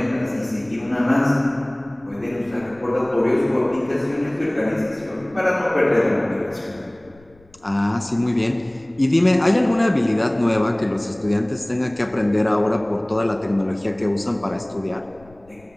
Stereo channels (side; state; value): left; noise; rumble, 28 dB below the sound